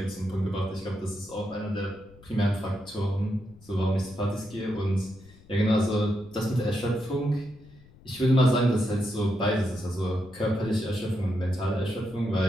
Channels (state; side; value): noise; left; rumble, 24 dB below the sound